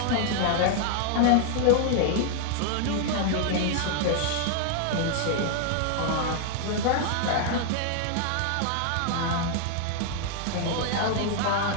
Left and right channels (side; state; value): both; different; correlation 0.00